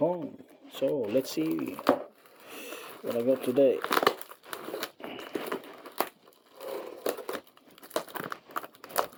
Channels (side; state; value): both; identical; correlation 1.00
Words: So let's see what I got today.